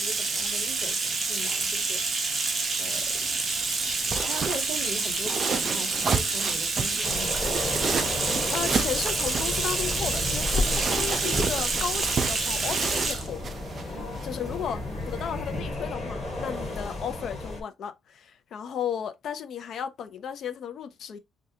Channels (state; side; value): normal; both; correlation 0.74